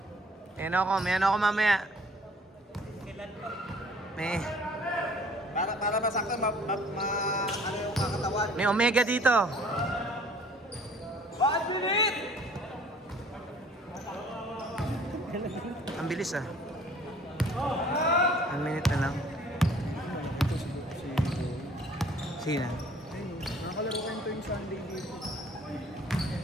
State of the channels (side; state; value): both; normal; correlation 0.54